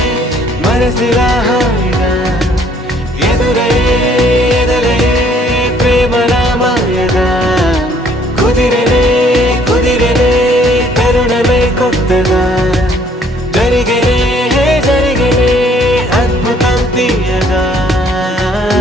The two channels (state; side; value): normal; both; correlation 0.62